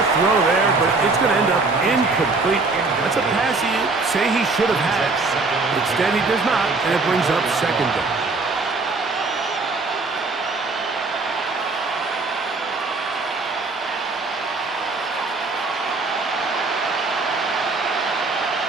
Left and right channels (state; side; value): quieter; left; 3.7 dB